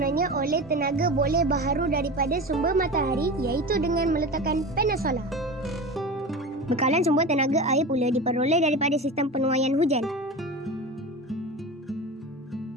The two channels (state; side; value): normal; both; correlation 0.29